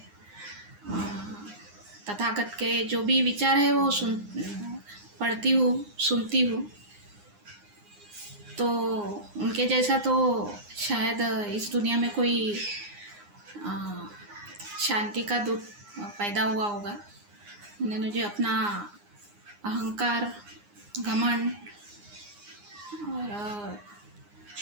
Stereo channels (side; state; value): left; late; 9.7 ms